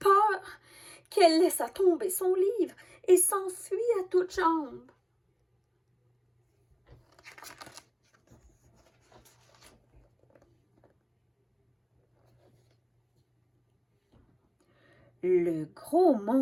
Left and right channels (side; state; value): both; identical; correlation 1.00